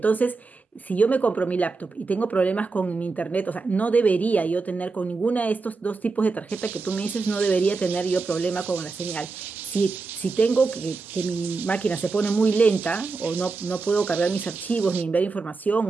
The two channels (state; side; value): quieter; left; 4.1 dB